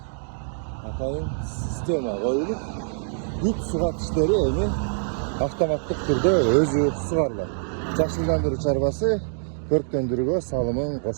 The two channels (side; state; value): left; silent; digital silence